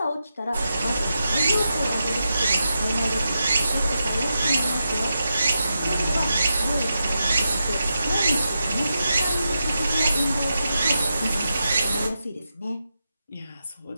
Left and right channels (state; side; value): inverted; both; correlation -0.88